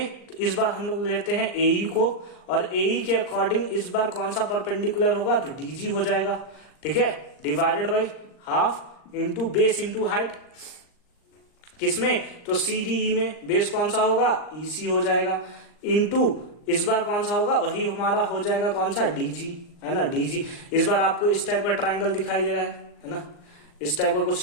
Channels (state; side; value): late; right; 39 ms